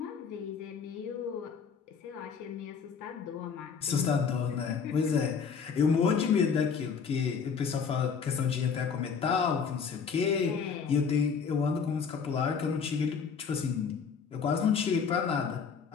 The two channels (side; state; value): right; quieter; 6.1 dB